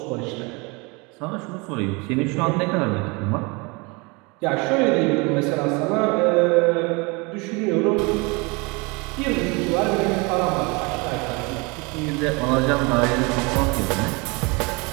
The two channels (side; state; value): left; quieter; 28.1 dB